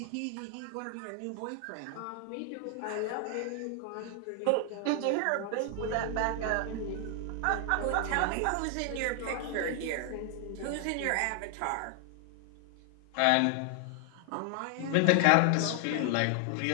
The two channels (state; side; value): different; both; correlation 0.00